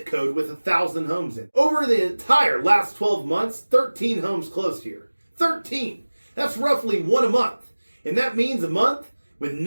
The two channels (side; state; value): both; inverted; correlation -1.00